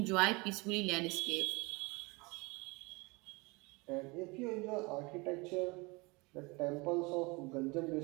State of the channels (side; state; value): left; quieter; 26.3 dB